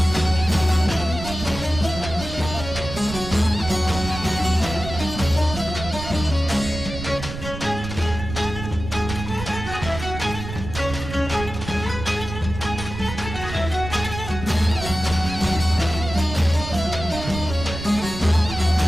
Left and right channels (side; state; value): right; noise; rumble, 9 dB below the sound